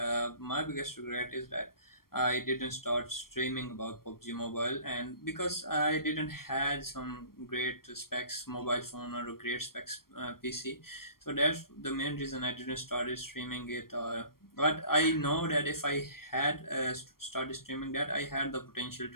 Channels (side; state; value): right; late; 0.93 ms